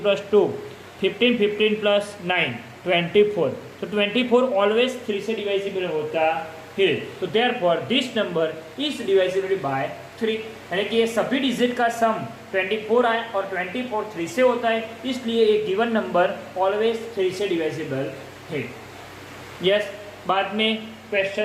+ 2 15, 15 + 9 24. तो 24 ऑलवेज 3 से डिवाइजिबल होता है. तो therefore this number is divisible by 3, यानी कि ये सभी डिजिट का सम 24 आए और 24 3 से होता है, इसलिए एक गिवन नंबर ऑलवेज 3 से डिवाइजिबल है. यस, बाद में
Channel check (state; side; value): identical; both; correlation 1.00